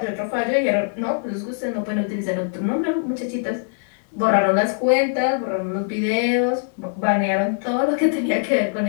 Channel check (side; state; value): right; silent; 64 dB below the other